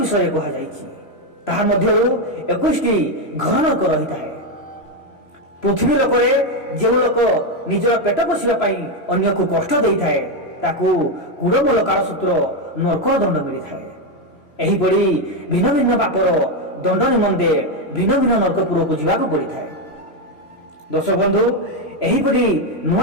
कहा जाइछि। ताहा मध्यरु 21 घर नरक रही थाए। पृथ्वी लोकरे जो लोक निजर पेट पोषिबा पाई अन्य को कष्ट देई थाए ताकू कुड़मूल कालसूत्र नरकर दंड मिली थाए। एही पड़ी भिन्न भिन्न पापर दंड निमंते भिन्न भिन्न नरकपुर को जीवाक पड़ी थाए। दर्शक बंधु, एही पड़ी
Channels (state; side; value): late; right; 3.0 ms